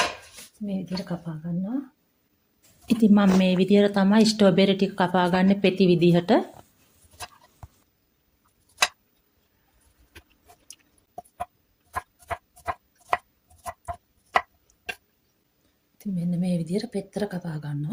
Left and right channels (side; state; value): both; identical; correlation 1.00